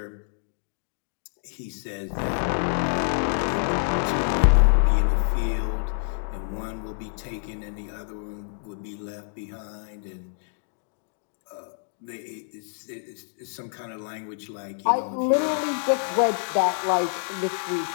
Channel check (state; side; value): silent; right; digital silence